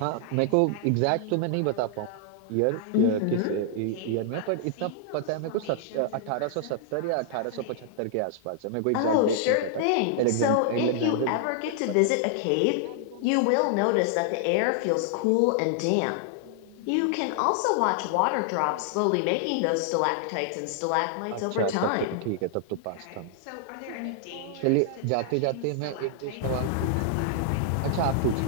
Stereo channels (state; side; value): different; both; correlation -0.01